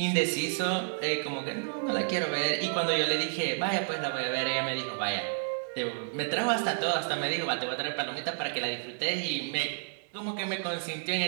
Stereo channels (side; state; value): left; silent; 57 dB below the other